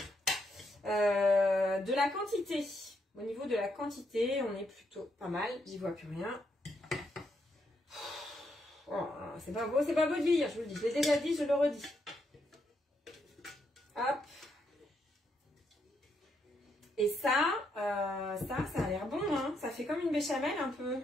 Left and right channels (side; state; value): both; normal; correlation 0.78